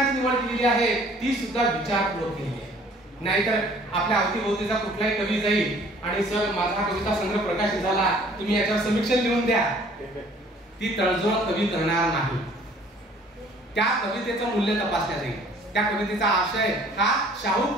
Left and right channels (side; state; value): both; normal; correlation 0.55